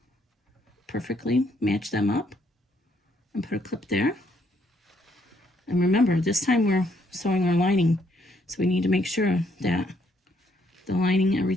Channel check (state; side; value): normal; both; correlation 0.71